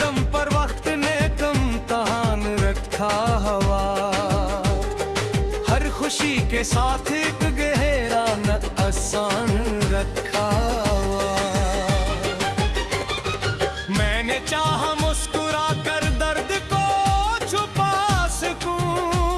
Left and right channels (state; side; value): identical; both; correlation 1.00